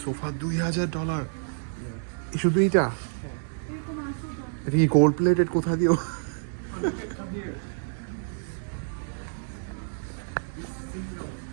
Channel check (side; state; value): left; silent; digital silence